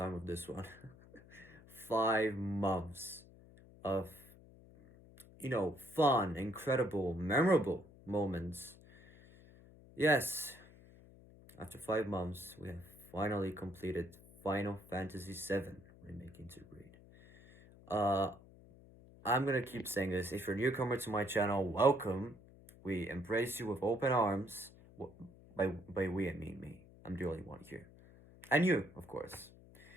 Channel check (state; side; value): noise; left; hum, 22 dB below the sound